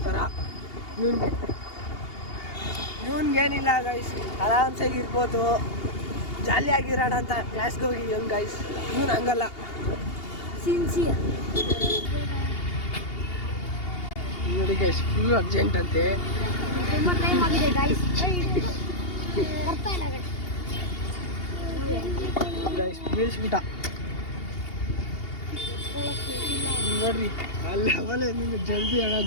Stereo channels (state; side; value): late; right; 2.8 ms